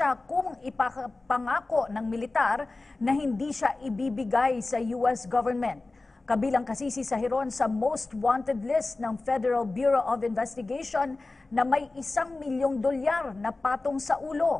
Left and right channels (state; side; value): quieter; right; 3.3 dB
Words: kung ipapangako ng militar na hindi siya ibibigay sa US government. Kabilang kasi si Sahiron sa most wanted list ng Federal Bureau of Investigation na may $1 milyong na patong sa